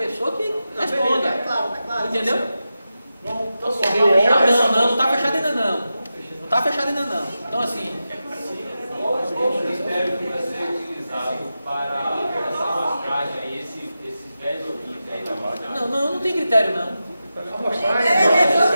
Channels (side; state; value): both; inverted; correlation -0.91